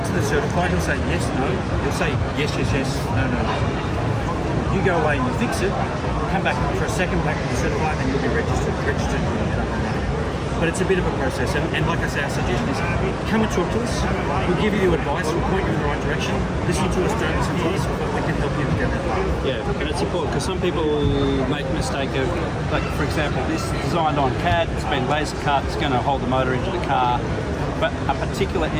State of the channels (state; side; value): identical; both; correlation 1.00